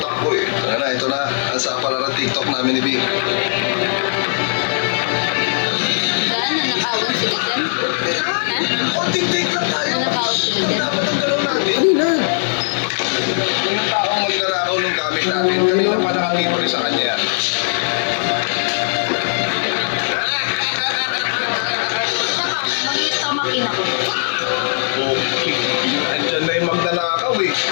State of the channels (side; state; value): right; silent; digital silence